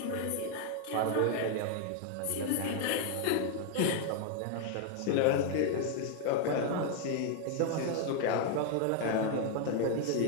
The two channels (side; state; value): both; different; correlation 0.00